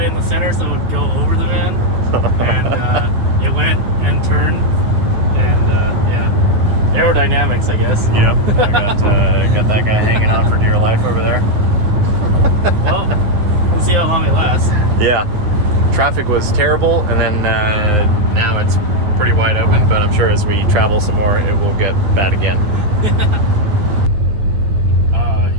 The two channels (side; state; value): left; late; 9.3 ms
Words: in the center so it would go over the van, and it went and turned, and yeah, aerodynamics, I guess. Yep. I got that guy hanging on for dear life over there. Well, we'll see how long it lasts. Yeah. Traffic was terrible, and then now it's pretty wide open, but I'm sure as we travel some more, it will get bad again.